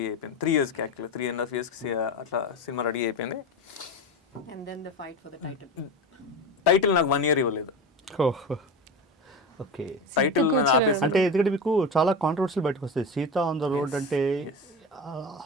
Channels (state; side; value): normal; both; correlation 0.24